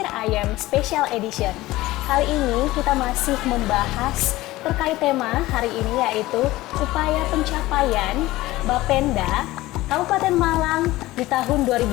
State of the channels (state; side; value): quieter; right; 17.9 dB